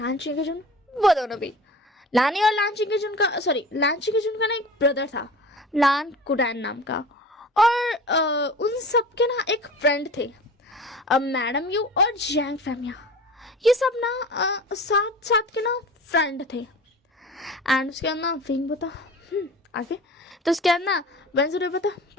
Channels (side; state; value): both; normal; correlation 0.38